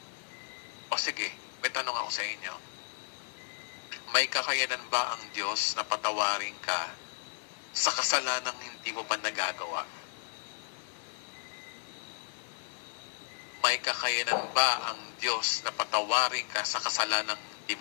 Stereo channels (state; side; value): silent; right; 55 dB below the other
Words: O sige, may tanong ako sa inyo. May kakayanan ba ang Diyos na patawarin ka sa kasalanang hindi mo pa nagagawa? May kakayanan ba ang Diyos na patawarin ka sa kasalanang hindi